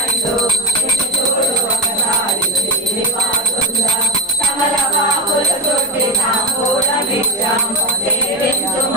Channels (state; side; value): normal; both; correlation 0.19